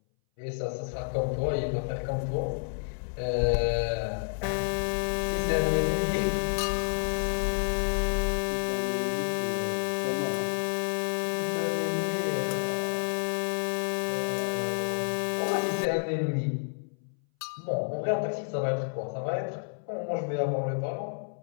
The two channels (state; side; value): silent; right; 58 dB below the other